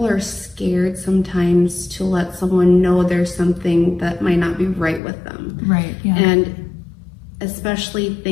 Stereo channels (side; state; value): right; drops out; at 5.0 s